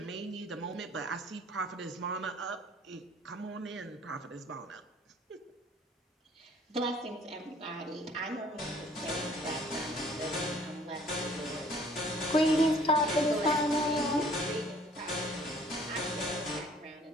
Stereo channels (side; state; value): both; normal; correlation 0.56